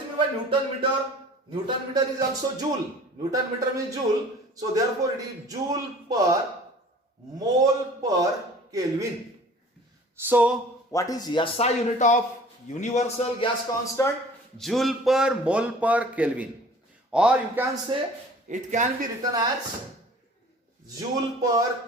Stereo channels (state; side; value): normal; both; correlation 0.47